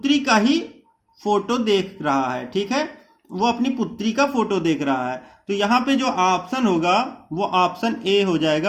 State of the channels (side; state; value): both; identical; correlation 1.00